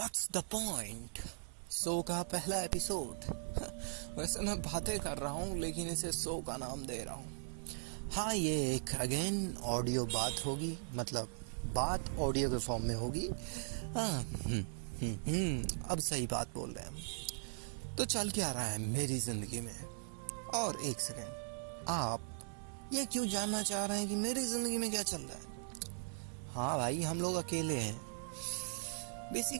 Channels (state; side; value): silent; left; 52 dB below the other